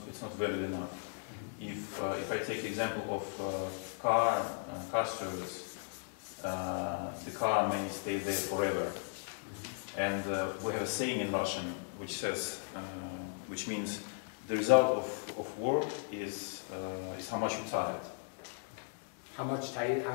valued enough. If I take the example of car service, the car may stay there forever. And we have a saying in Russian which says, which means the result of work is how much you're tired. How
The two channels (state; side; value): silent; right; digital silence